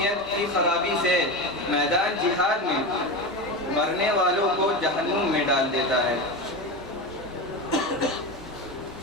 کی خرابی سے میدان جہاد میں مرنے والوں کو جہنم میں ڈال دیتا ہے۔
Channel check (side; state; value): both; normal; correlation 0.21